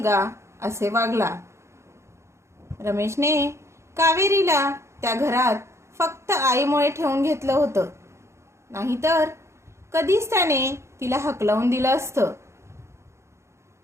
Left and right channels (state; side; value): late; left; 0.13 ms